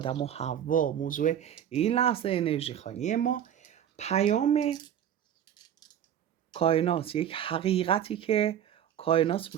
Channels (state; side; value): quieter; left; 9.8 dB